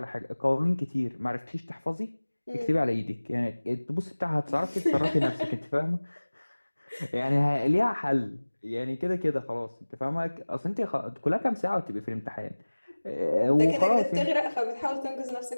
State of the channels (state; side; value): inverted; both; correlation -1.00